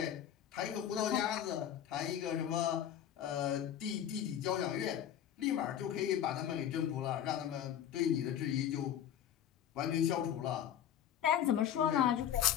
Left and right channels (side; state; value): right; quieter; 10.0 dB